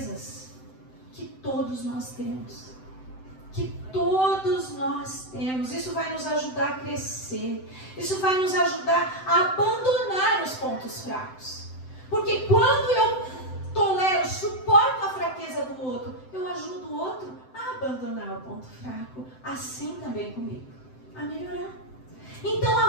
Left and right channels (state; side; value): late; right; 7.8 ms